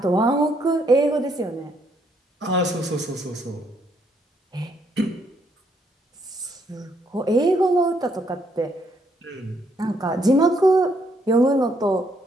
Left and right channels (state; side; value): normal; both; correlation 0.72